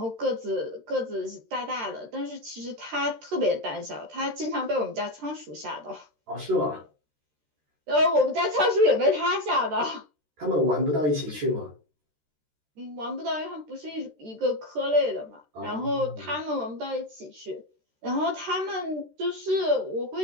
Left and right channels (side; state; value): left; late; 13 ms